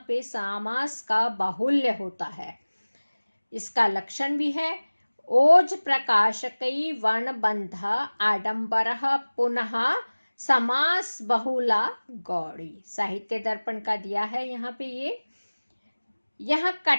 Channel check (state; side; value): inverted; both; correlation -1.00